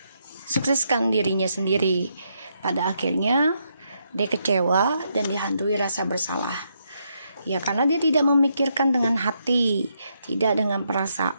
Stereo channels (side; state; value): both; inverted; correlation -0.78